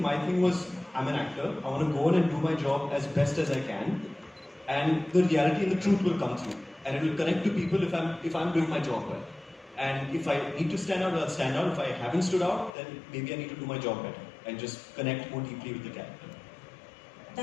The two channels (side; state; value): right; drops out; at 12.7 s